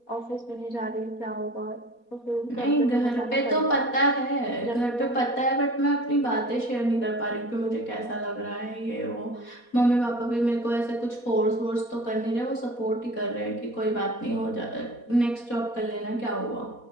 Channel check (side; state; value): right; late; 4.2 ms